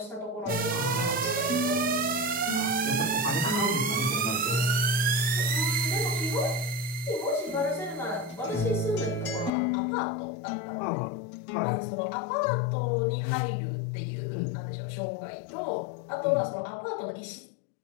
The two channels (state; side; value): drops out; right; at 9.5 s